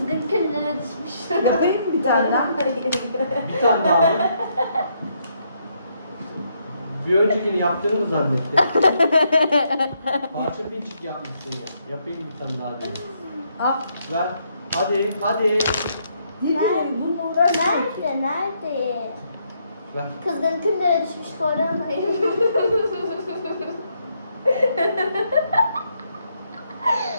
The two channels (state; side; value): inverted; both; correlation -0.75